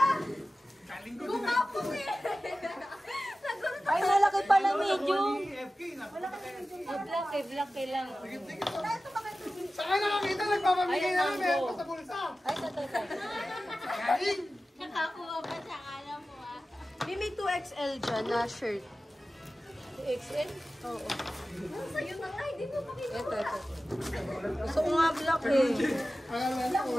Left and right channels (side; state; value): both; normal; correlation 0.95